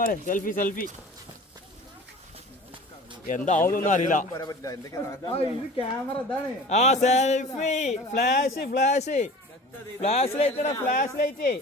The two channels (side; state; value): both; normal; correlation 0.41